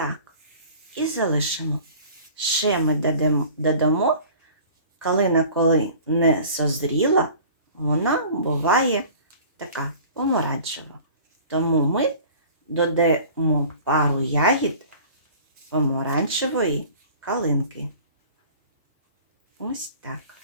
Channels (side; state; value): both; inverted; correlation -0.45